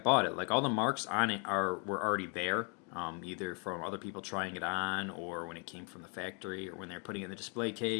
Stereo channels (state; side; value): quieter; right; 37.3 dB